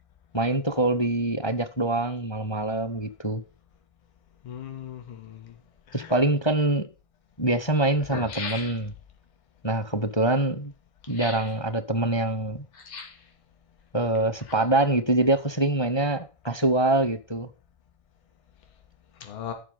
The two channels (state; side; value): late; right; 1.6 ms